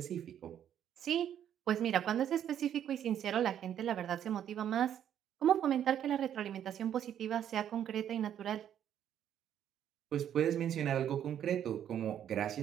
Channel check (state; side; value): quieter; left; 10.0 dB